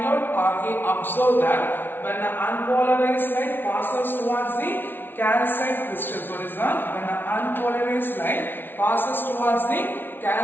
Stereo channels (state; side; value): late; right; 0.10 ms